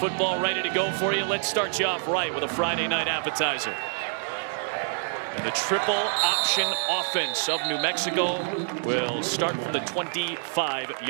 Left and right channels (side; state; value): left; silent; digital silence